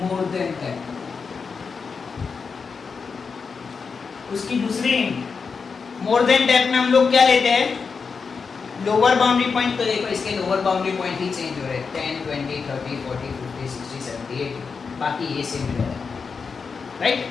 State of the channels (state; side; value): quieter; right; 5.3 dB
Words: than type. उसकी दूसरी मोर देन टाइप में हम लोग क्या लेते हैं? Lower boundary point. तो देखो इसके लोअर बाउंड्री पॉइंट ही चेंज हो रहे हैं, 10, 20, 30, 40, 50, 60, 70, 80, बाकी ये सेम रहेगा, राइट।